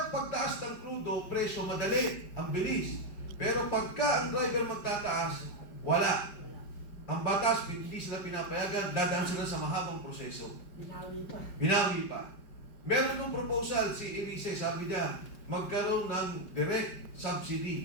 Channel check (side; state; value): right; late; 5.1 ms